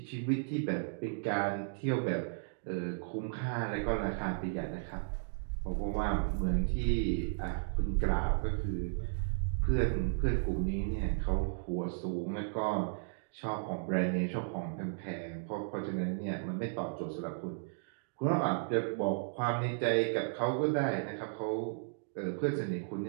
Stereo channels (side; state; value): left; silent; digital silence